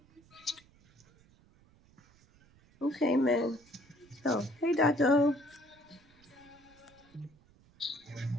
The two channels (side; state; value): right; noise; rumble, 29 dB below the sound